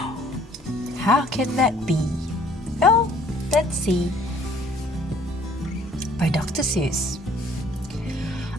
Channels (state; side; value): normal; both; correlation 0.59